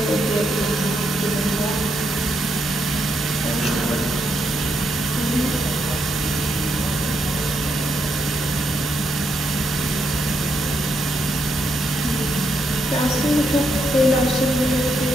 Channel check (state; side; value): normal; both; correlation 0.79